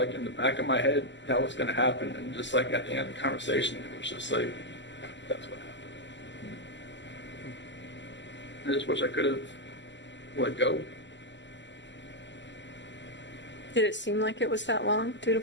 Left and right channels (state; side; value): late; right; 0.53 ms